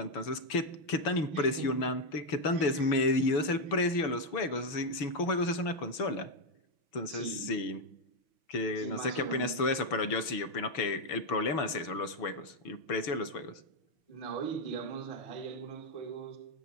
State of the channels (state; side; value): late; right; 6.2 ms